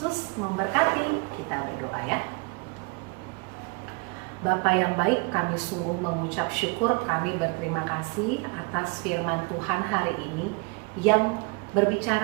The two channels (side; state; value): left; quieter; 29.1 dB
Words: memberkati. Kita berdoa ya. Bapa yang baik, kami sungguh mengucap syukur, kami berterima kasih atas firman Tuhan hari ini yang